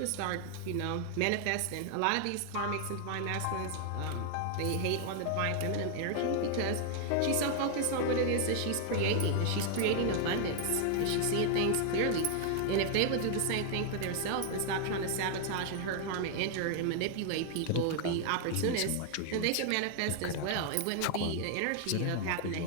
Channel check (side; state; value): both; different; correlation 0.00